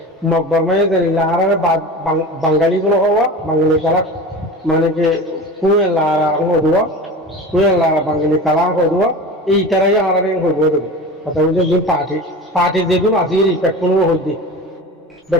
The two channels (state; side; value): normal; both; correlation 0.33